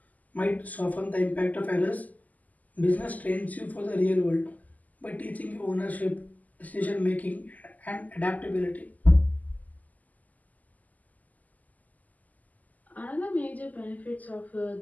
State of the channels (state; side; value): late; right; 0.079 ms